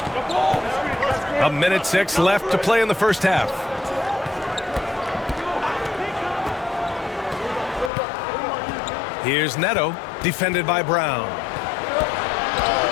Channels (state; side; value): drops out; right; at 7.9 s